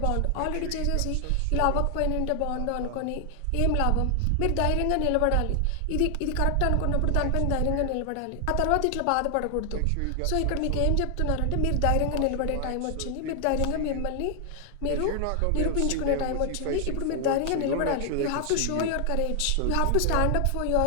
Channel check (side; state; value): both; different; correlation 0.00